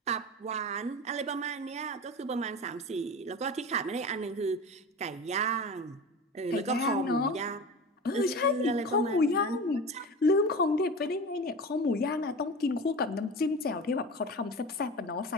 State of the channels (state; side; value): normal; both; correlation 0.31